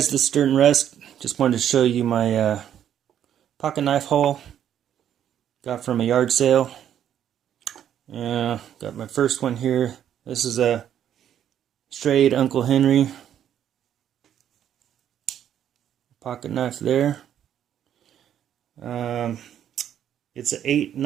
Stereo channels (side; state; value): left; quieter; 10.0 dB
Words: this is ℚ𝕠𝕔𝕜𝕚. Just wanted to show you my pocket knife haul. Got from a yard sale. Yeah, got my first one here. This is a straight Uncle Henry pocket knife there. It's a